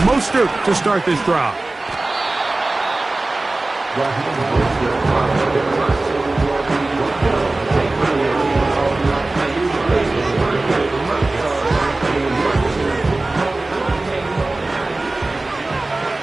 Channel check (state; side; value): quieter; left; 3.0 dB